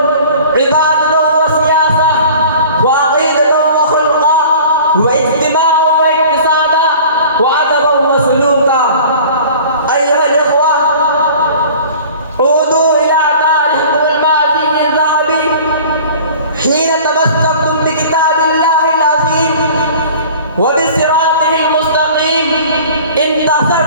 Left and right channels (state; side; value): inverted; both; correlation -0.45